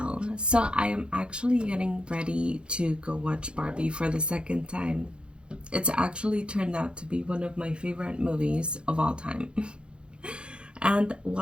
So I am actually getting ready to go watch Barbie for the second time. It's actually turned out to be one of my favorite movies of all time. And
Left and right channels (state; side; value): late; left; 0.055 ms